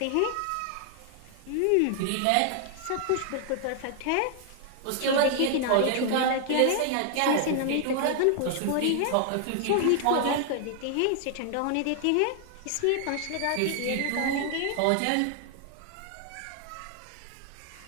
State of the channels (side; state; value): both; different; correlation 0.00